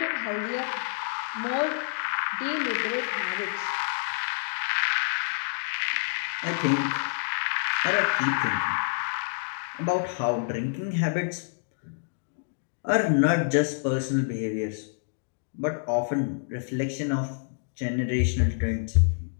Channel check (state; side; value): silent; right; digital silence